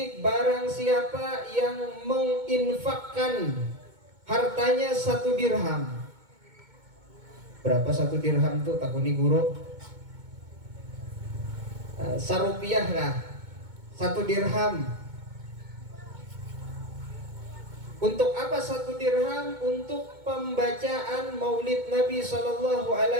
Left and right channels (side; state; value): left; late; 2.2 ms